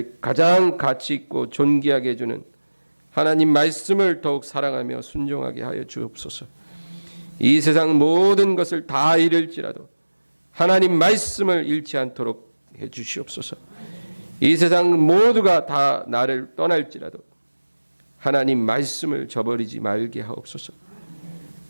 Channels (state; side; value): inverted; both; correlation -1.00